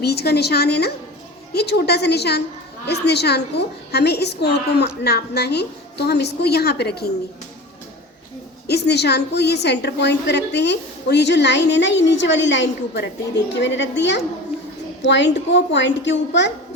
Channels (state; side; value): normal; both; correlation 0.34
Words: का निशान है ना, ये छोटा सा निशान, इस निशान को हमें इस कोण को नापना है तो हम इसको यहाँ पे रखेंगे। इस निशान को ये सेंटर पॉइंट पे रखते हैं और ये जो लाइन है ना, ये नीचे वाली लाइन के ऊपर रखते हैं। देखिए मैंने रख दिया पॉइंट को पॉइंट के ऊपर,